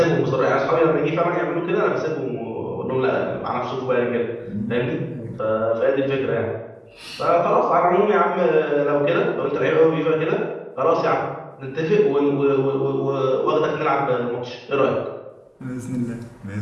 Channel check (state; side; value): identical; both; correlation 1.00